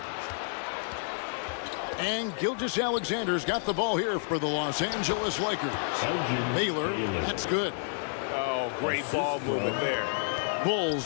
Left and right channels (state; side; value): silent; right; 58 dB below the other